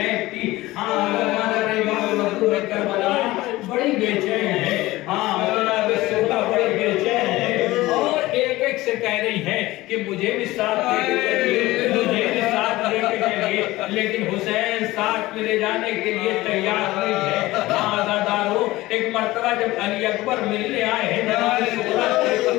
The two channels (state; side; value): quieter; right; 18.4 dB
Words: کی۔ ہاں کربلا بڑی بے چین ہے، ہاں جناب سودا بڑی بے چین ہے اور ایک ایک سے کہہ رہی ہے کہ مجھے بھی ساتھ لے کے چلیے، مجھے بھی ساتھ لے کے چلیے، لیکن حسین ساتھ میں لے جانے کے لیے تیار نہیں ہے۔ ہاں آزادارو ایک مرتبہ جب علی اکبر ملنے آئے ہیں جناب سودا سے